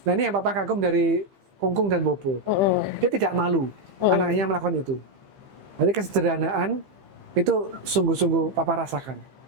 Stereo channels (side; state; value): left; late; 15 ms